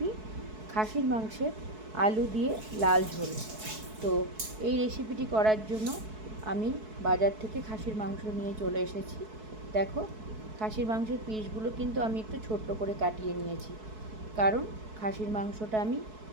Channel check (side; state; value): left; late; 4.6 ms